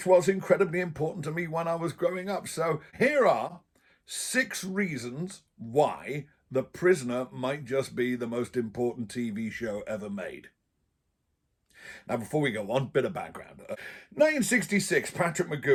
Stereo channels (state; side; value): identical; both; correlation 1.00